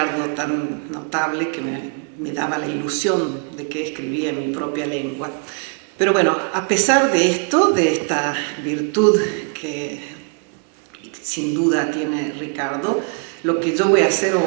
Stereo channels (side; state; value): left; quieter; 38.2 dB